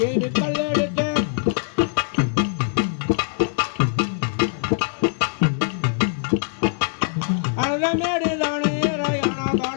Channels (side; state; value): right; silent; digital silence